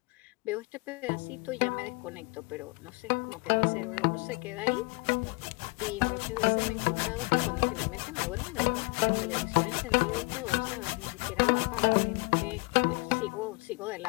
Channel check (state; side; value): quieter; right; 30.1 dB